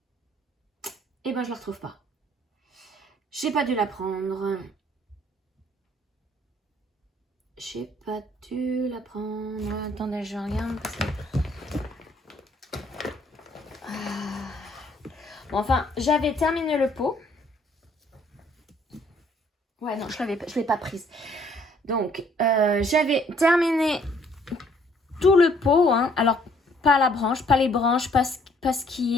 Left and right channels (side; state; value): both; normal; correlation 0.63